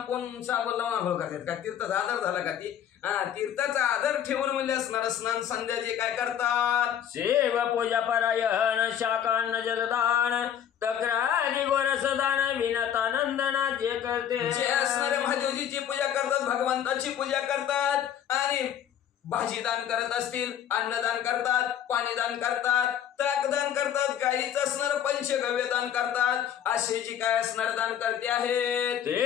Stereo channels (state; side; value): quieter; right; 9.7 dB